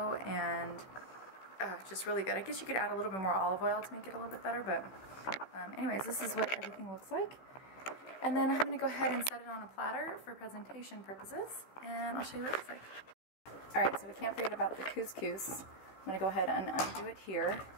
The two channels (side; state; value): right; late; 15 ms